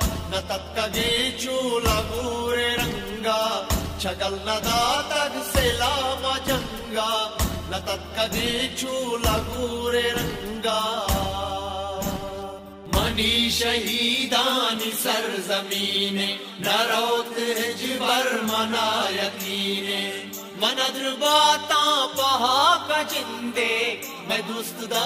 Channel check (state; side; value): identical; both; correlation 1.00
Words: نہ تکگے چولا گورے رنگا چگل ندا تک سلام جنگا نہ تکگے چولا گورے رنگا منی شہیدانی سرزمینے نہ روت ہجبر منا یقینے من درباتاں پہا کا جندے میں دوست